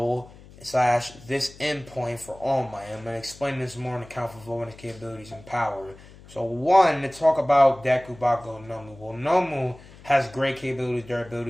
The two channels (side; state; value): left; noise; hum, 21 dB below the sound